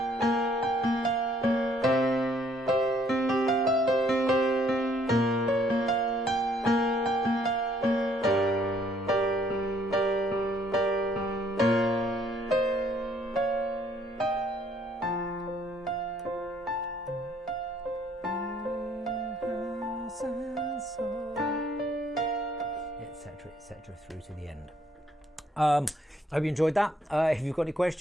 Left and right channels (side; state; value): both; normal; correlation 0.65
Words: Etc. through to the end. I hope you enjoyed that. If you've got any